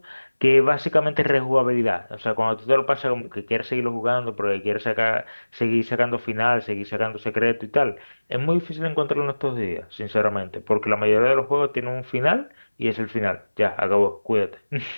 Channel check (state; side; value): inverted; both; correlation -1.00